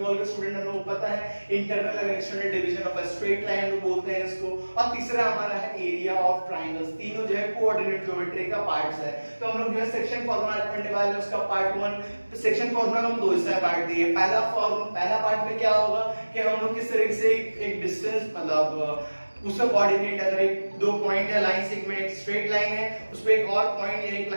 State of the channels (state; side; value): inverted; both; correlation -1.00